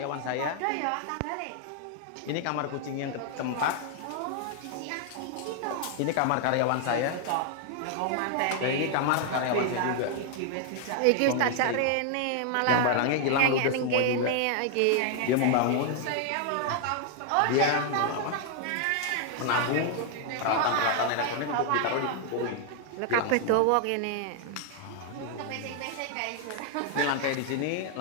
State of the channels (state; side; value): different; both; correlation 0.00